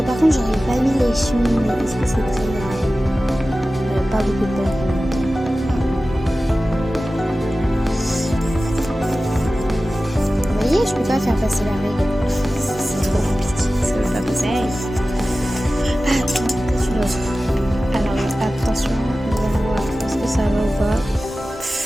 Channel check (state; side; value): normal; both; correlation 0.95